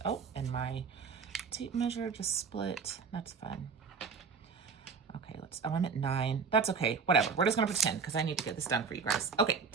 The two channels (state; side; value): quieter; left; 5.5 dB